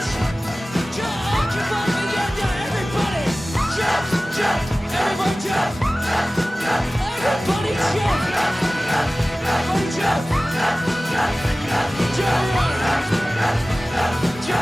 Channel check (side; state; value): both; normal; correlation 0.97